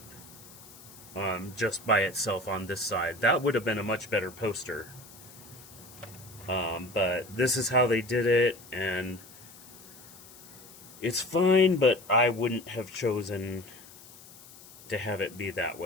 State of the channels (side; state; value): left; noise; hiss, 20 dB below the sound